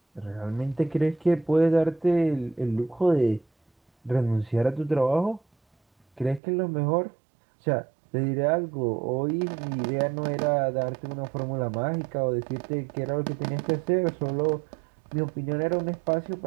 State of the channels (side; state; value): left; drops out; at 6.4 s